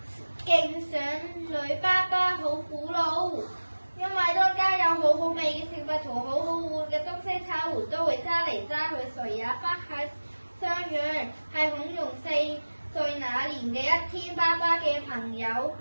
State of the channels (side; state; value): both; inverted; correlation -1.00